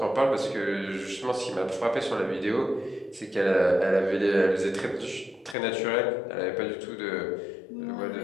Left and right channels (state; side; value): drops out; right; at 5.6 s